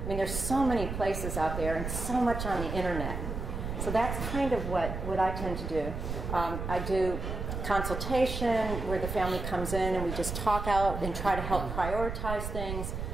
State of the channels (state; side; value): noise; right; rumble, 5 dB below the sound